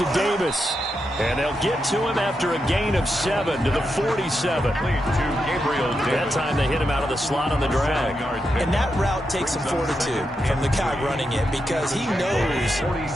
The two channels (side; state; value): both; normal; correlation 0.85